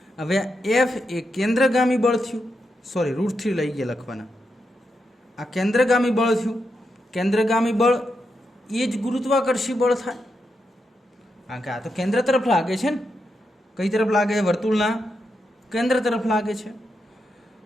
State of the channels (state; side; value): normal; both; correlation 0.85